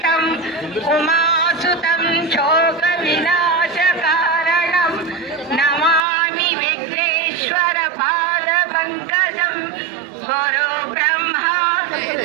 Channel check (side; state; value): left; drops out; at 6.0 s